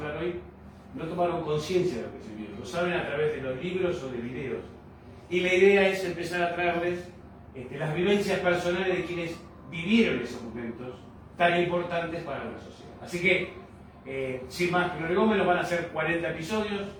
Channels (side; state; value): both; identical; correlation 1.00